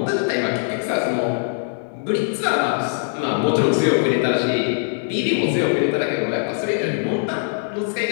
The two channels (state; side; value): silent; right; digital silence